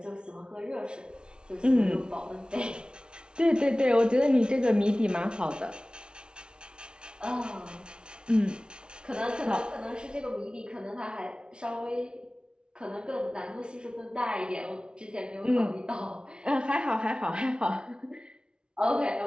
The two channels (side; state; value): left; late; 0.055 ms